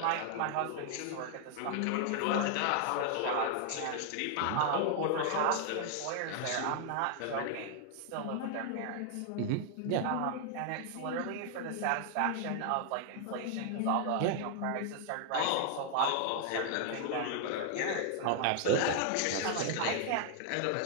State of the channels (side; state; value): both; different; correlation 0.00